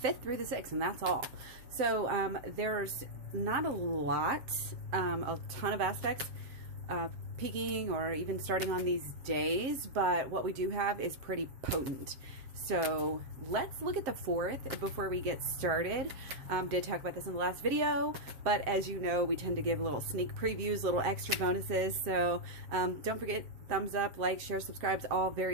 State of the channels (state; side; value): late; left; 7.6 ms